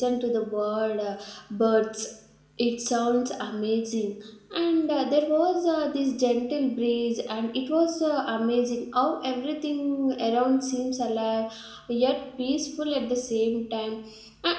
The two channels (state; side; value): identical; both; correlation 1.00